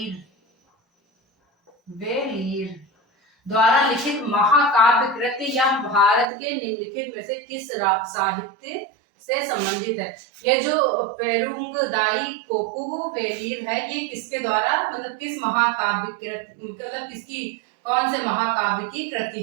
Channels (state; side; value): drops out; left; at 6.2 s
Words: द्वारा लिखित महाकाव्य कृति या भारत के निम्नलिखित में से किस साहित्य से संबंधित है? ये जो पेरुंगदाई कोकू वेलीर है, ये किसके द्वारा मतलब किस महाकाव्य कृति, मतलब किसकी, कौन से महाकाव्य की कृति